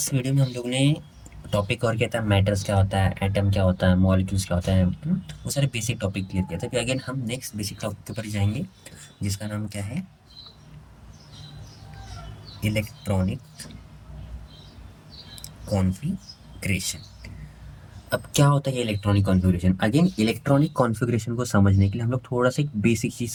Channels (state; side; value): identical; both; correlation 1.00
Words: video में हम लोग ने टॉपिक और किया था, मैटर्स क्या होता है, एटम क्या होता है, मॉलिक्यूल्स क्या होता है, वो सारे बेसिक टॉपिक क्लियर किया था। फिर अगेन हम नेक्स्ट बेसिक टॉपिक के ऊपर जाएंगे, जिसका नाम क्या है, इलेक्ट्रॉनिक कॉन्फ़िगरेशन। अब क्या होता है ये electronic configuration? Again electronic configuration को समझने के लिए हम लोग थोड़ा सा एक बेसिक चीज़